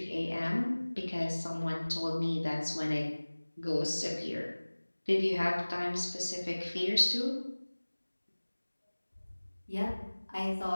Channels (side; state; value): both; inverted; correlation -1.00